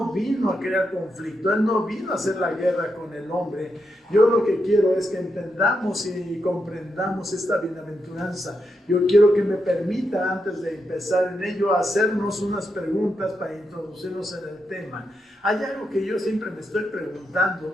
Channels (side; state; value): both; normal; correlation 0.84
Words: vino a crear conflicto, Él no vino a hacer la guerra con el hombre. Yo lo que quiero es que entendamos y comprendamos esta bienaventuranza. Yo quiero que me permita, antes de empezar en ello, hacernos unas preguntas para introducirnos en el tema. Hay algo que yo siempre me estoy